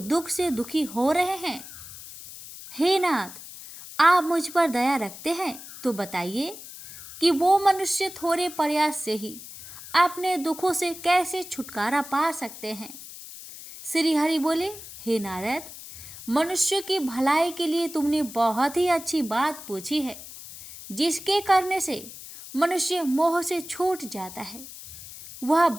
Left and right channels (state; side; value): noise; left; hiss, 14 dB below the sound